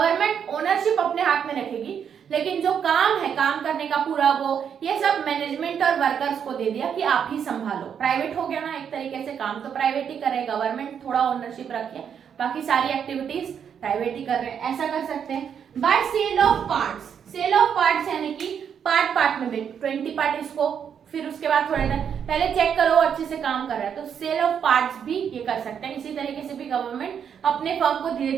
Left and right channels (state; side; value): quieter; left; 7.9 dB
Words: ओनरशिप अपने हाथ में रखेगी लेकिन जो काम है, काम करने का पूरा वो, ये सब मैनेजमेंट और वर्कर्स को दे दिया कि आप ही संभालो। प्राइवेट हो गया ना एक तरीके से, काम तो प्राइवेट ही करे, गवर्नमेंट थोड़ा ओनरशिप रखिए, बाकी सारी एक्टिविटीज प्राइवेट ही कर रहे हैं, ऐसा कर सकते हैं। By sale of parts, sale of parts यानी कि पार्ट पार्ट में 20 पार्ट इसको, फिर उसके बाद थोड़ा पहले चेक करो अच्छे से काम कर रहा है, तो सेल ऑफ पार्ट्स भी ये कर सकते हैं। इसी तरीके से भी गवर्नमेंट अपने फर्म को धीरे